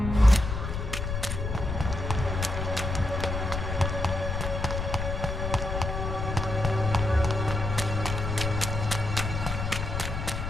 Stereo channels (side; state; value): left; noise; rumble, 3 dB below the sound